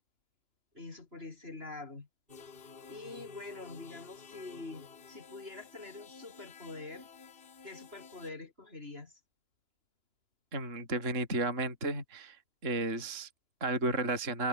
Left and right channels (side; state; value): left; late; 2.9 ms